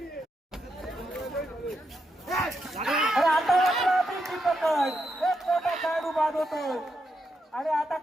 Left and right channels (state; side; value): normal; both; correlation 0.82